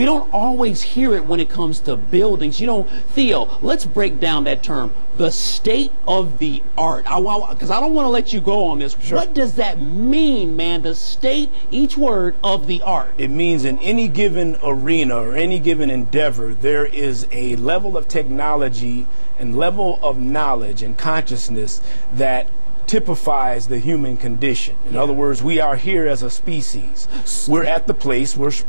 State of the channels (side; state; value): both; inverted; correlation -1.00